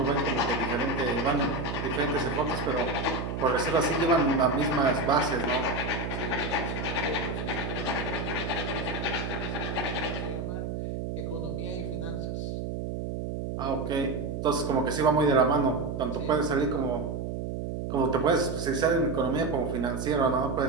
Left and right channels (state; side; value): noise; right; hum, 4 dB below the sound